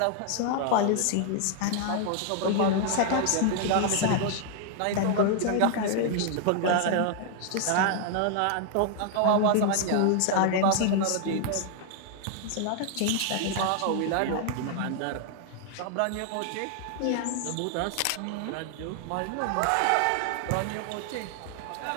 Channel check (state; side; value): different; both; correlation 0.00